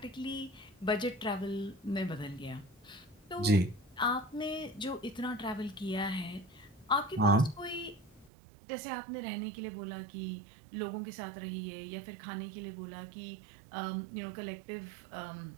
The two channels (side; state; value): left; drops out; at 8.3 s